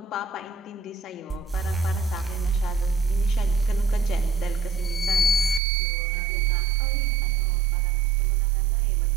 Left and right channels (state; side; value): drops out; left; at 5.6 s